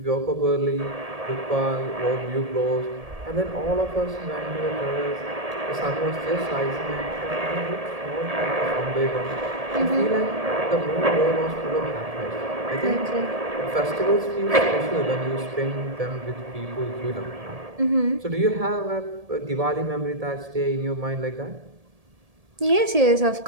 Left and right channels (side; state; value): left; late; 1.7 ms